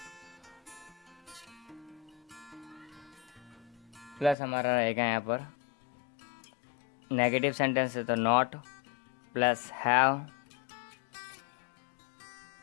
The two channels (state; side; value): drops out; right; at 4.4 s